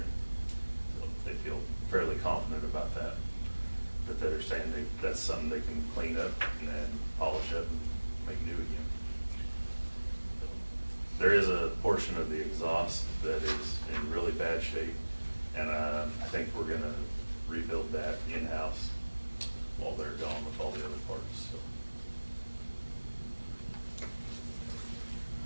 So they feel fairly confident about that. But they're saying that's something they can clean up and then polish up and make new again. So there is a portion of the exhaust that is in really bad shape, and I think we're gonna rebuild that in-house while they're gone with all the other parts, so.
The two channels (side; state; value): both; inverted; correlation -1.00